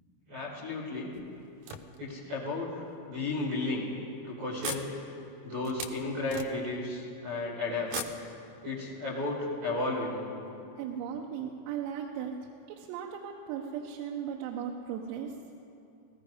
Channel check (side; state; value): left; late; 27 ms